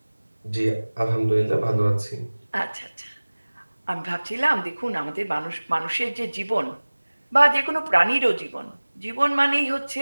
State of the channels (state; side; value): inverted; both; correlation -1.00